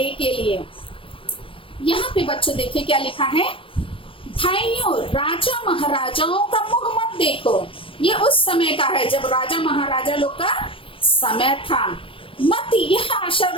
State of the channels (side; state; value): right; late; 0.26 ms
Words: के लिए। यहाँ पे बच्चों देखिए क्या लिखा है, भाइयों राजा महाराजाओं का मुंह मत देखो। ये उस समय का है जब राजा महाराजा लोग का समय था। मत यह आशा